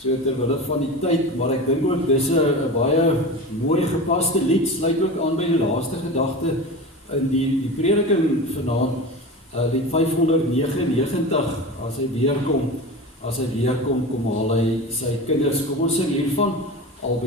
terwille van die tyd, maar ek dink ook dis 'n baie mooi gepaste lied, sluit ook aan by die laaste gedagte in die prediking vanaand, lied 599, as hy weerkom, kom haal hy sy kinders. Kom ons sing hiervan,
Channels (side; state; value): both; normal; correlation 0.29